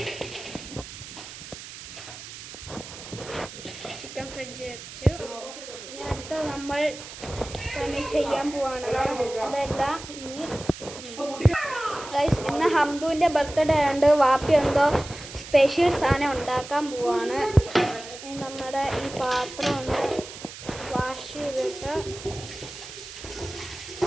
ചിക്കൻ ഫ്രിഡ്ജിൽ വെച്ചു. ഇനി അടുത്ത നമ്മൾ പണി ചെയ്യാൻ പോവാണ്. അതെല്ലാം ഗൈസ്, ഇന്ന് ഹംദുവിൻ്റെ ബർത്ത്ഡേ ആയതുകൊണ്ട് വാപ്പി എന്തോ സ്പെഷ്യൽ സാധനം ഉണ്ടാക്കാൻ പോവാണ്. ഇനി നമ്മുടെ ഈ പാത്രം ഒന്ന് വാഷ് ചെയ്തിട്ട്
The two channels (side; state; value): right; noise; hiss, 13 dB below the sound